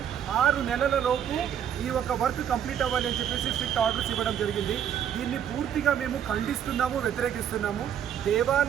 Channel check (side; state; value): left; quieter; 9.3 dB